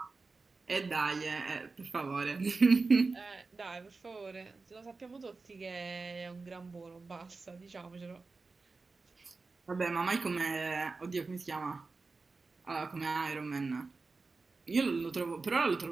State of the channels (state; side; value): quieter; left; 4.0 dB